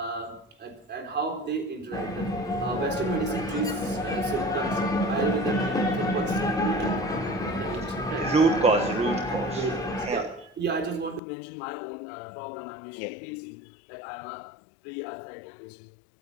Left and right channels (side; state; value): right; drops out; at 11.2 s